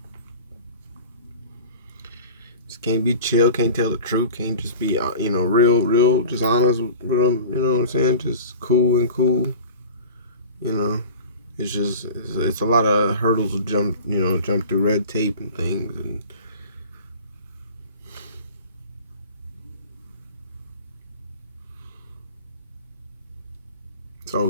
just can't be chill, can't tell the truth, can't just be, you know, real, just honest with them, you know what I'm saying? Just cool, you know. It's a lot of hurdles to jump through, red tape and things, and it's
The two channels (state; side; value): inverted; both; correlation -0.38